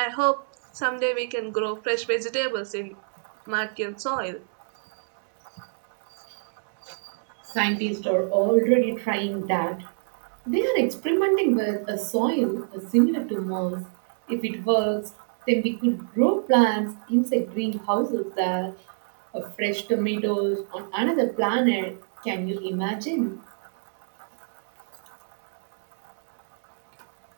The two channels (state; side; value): silent; left; digital silence